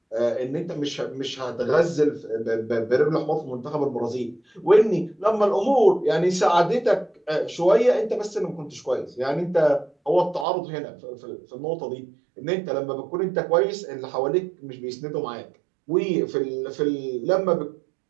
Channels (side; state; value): left; drops out; at 10.5 s